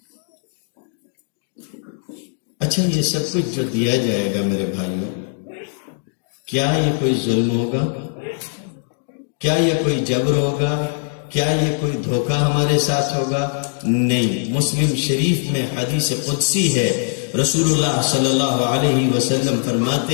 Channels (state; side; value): silent; right; digital silence